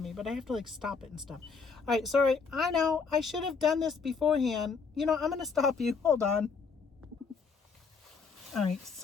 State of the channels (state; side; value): quieter; right; 5.2 dB